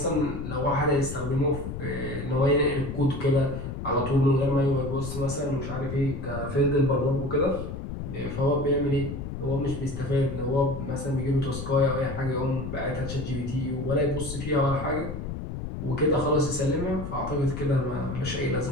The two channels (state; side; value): noise; left; rumble, 7 dB below the sound